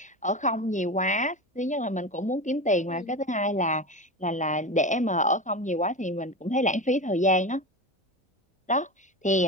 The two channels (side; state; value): both; normal; correlation 0.24